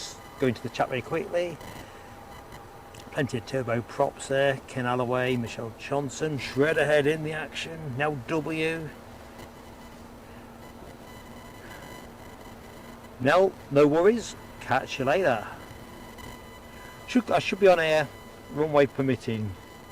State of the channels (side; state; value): both; identical; correlation 1.00